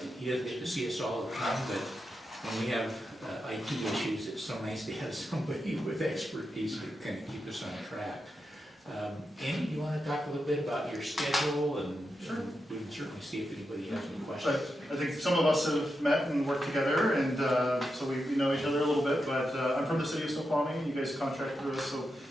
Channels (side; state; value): both; normal; correlation 0.87